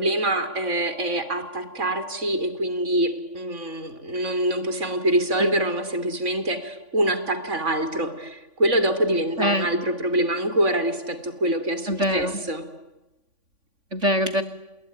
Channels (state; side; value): late; left; 3.5 ms